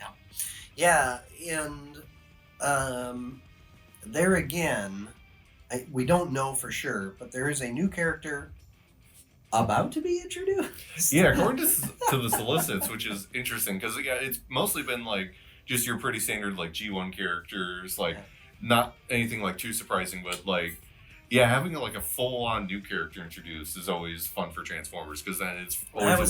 And there again, we don't know for sure, but there is a new character about to be introduced. Yeah, according to the solicits, which is interesting because it's mostly been like just your pretty standard like G1 characters, like not anything like too surprising, but like having like a full-on new character introduced is always fun for Transformers, because then it's always. I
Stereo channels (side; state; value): both; identical; correlation 1.00